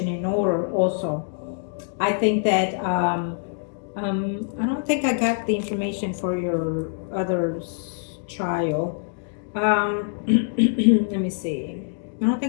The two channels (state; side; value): silent; right; digital silence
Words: in order also, I think that I don't think I got the information for your other child. Let me see. I don't